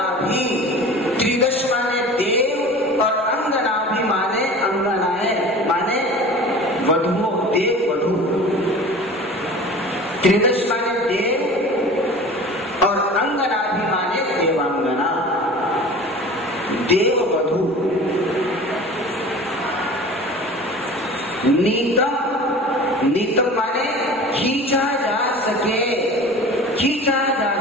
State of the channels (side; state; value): both; normal; correlation 0.39